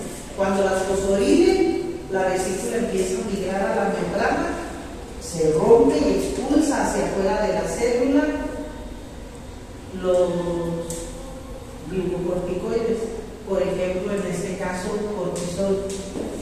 Cuando las fosforilen, la vesícula empieza a migrar a la membrana, se rompe y expulsa hacia afuera de la célula los glucocorticoides, por ejemplo, en este caso, cortisol.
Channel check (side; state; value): both; identical; correlation 1.00